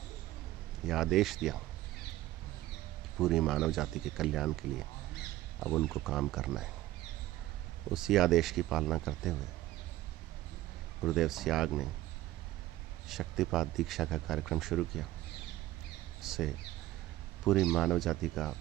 यह आदेश दिया कि पूरी मानव जाति के कल्याण के लिए अब उनको काम करना है। उसी आदेश की पालना करते हुए गुरुदेव सियाग ने शक्तिपात दीक्षा का कार्यक्रम शुरू किया। इससे पूरी मानव जाति का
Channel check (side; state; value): left; quieter; 15.5 dB